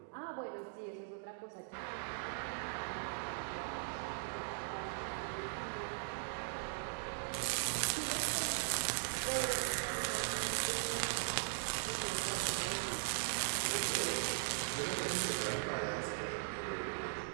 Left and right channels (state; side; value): silent; left; digital silence